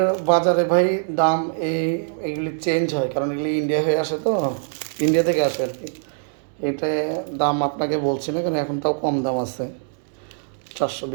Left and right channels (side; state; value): left; silent; digital silence